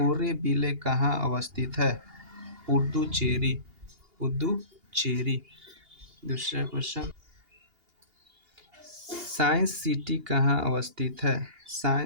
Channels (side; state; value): left; late; 2.8 ms